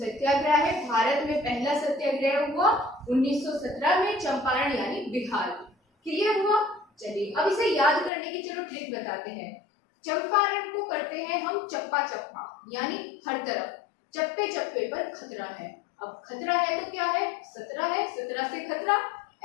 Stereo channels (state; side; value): drops out; right; at 8.1 s